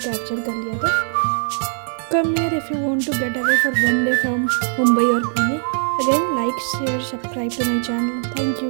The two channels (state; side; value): silent; left; 59 dB below the other